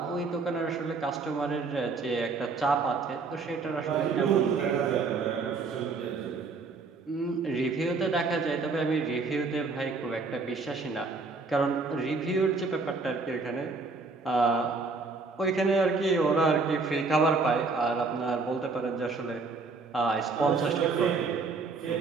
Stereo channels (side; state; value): left; quieter; 4.2 dB